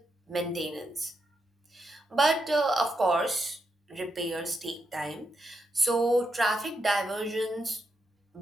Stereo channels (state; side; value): normal; both; correlation 0.83